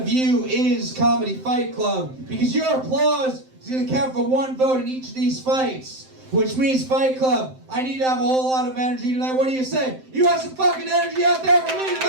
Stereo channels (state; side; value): late; left; 7.7 ms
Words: you is Comedy Fight Club. Because your applause is going to count for 1 vote in each of these fights. Which means, Fight Club, I need to have a whole lot of energy tonight. What do you say? You have some fucking energy out there for me